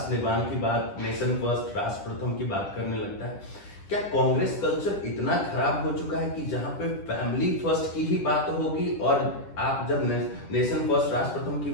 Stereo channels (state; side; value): late; right; 10 ms